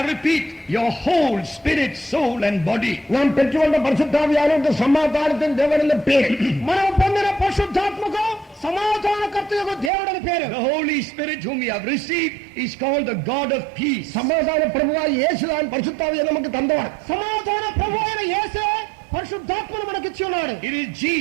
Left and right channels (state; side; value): drops out; left; at 9.9 s